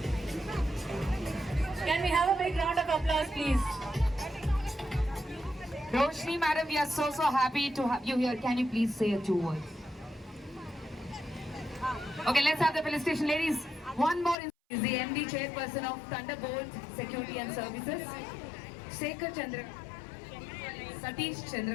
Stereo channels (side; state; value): right; drops out; at 14.4 s